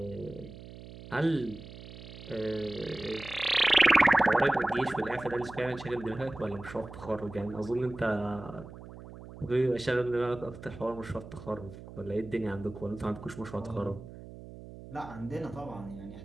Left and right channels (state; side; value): noise; right; hum, 15 dB below the sound